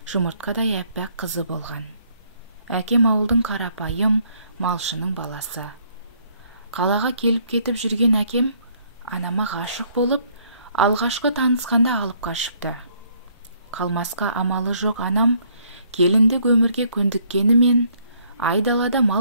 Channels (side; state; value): both; inverted; correlation -0.66